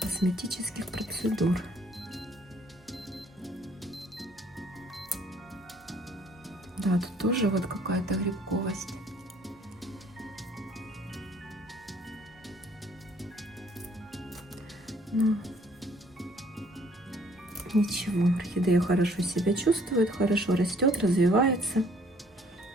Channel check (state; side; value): normal; both; correlation 0.60